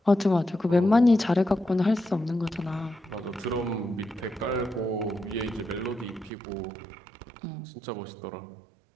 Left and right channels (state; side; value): drops out; left; at 6.3 s